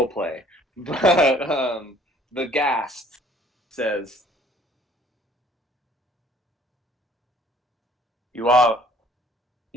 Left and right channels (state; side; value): normal; both; correlation 0.57